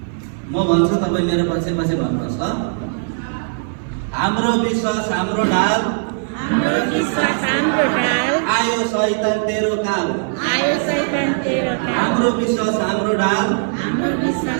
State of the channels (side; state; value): left; silent; 61 dB below the other